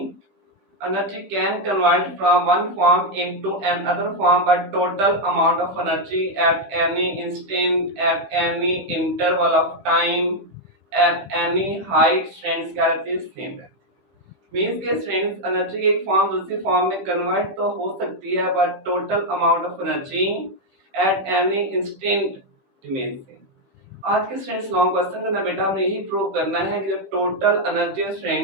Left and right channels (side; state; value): left; late; 15 ms